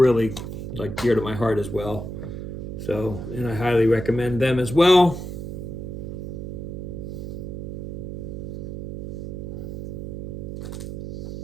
like dear to my heart as well. So, and I highly recommend them as well.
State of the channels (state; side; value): noise; right; hum, 7 dB below the sound